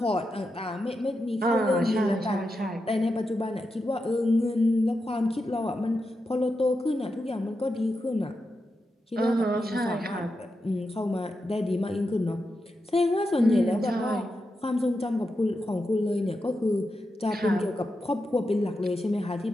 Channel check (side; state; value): both; normal; correlation 0.88